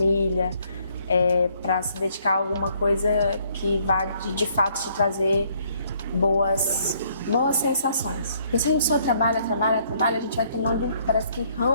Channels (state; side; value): inverted; both; correlation -0.67